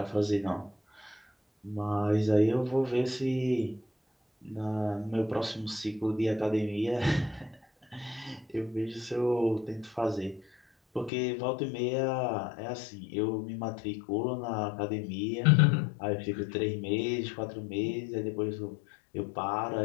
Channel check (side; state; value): right; drops out; at 11.1 s